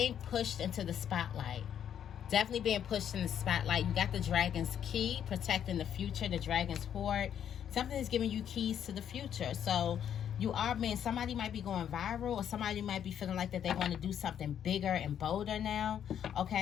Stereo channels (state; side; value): quieter; right; 9.3 dB